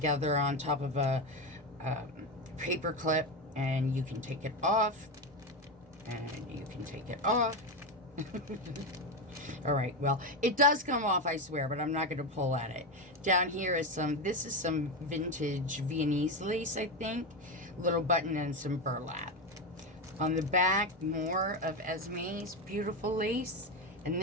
on top of a paper clip, and you can take it off, and you can take it off. All right, well, it does come off, I swear, but I'm not going to pull at it. Down here is this is some vintage Viennese lace, I think. Little button and some burlap. On the back, more of Esme's beautiful lace. And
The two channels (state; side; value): normal; both; correlation 0.14